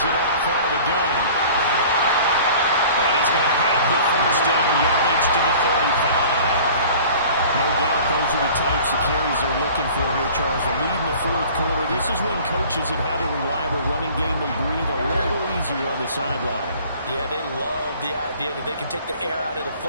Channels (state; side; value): inverted; both; correlation -0.46